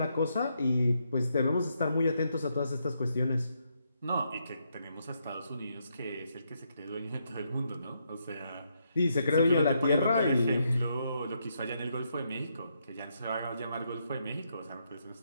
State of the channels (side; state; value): both; inverted; correlation -0.78